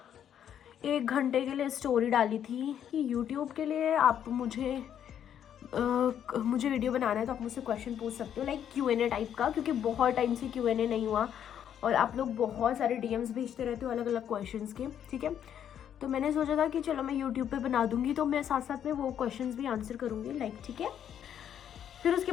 घंटे के लिए स्टोरी डाली थी कि यूट्यूब के लिए आप मुझे वीडियो बनाना है तो आप मुझसे क्वेश्चन पूछ सकते हो, लाइक Q&A टाइप का, क्योंकि बहुत टाइम से Q&A नहीं हुआ और आप लोग बहुत सारे DMs भेजते रहते हो अलग अलग क्वेश्चंस के, ठीक है। तो मैंने सोचा था कि चलो मैं यूट्यूब पे बना दूंगी, तो मैं साथ साथ में वो क्वेश्चंस भी आंसर करूंगी, लाइक, ठीक है। फिर उसके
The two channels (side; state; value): right; quieter; 9.5 dB